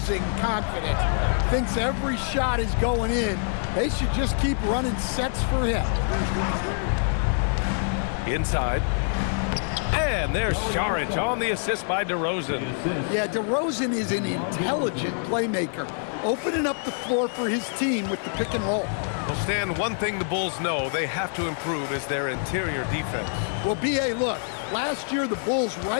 confidence. Thinks every shot is going in. They should just keep running sets for him. Inside. And there's Saric on the assist by DeRozan. Yeah, DeRozan is an intelligent playmaker, opening up the floor for his team with the pick and roll. Well, Stan, one thing the Bulls know they have to improve is their interior defense. Well, B.A., look, last year the Bulls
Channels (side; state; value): right; silent; digital silence